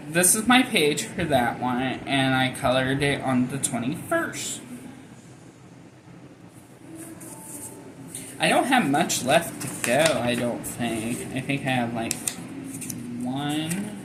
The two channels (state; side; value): identical; both; correlation 1.00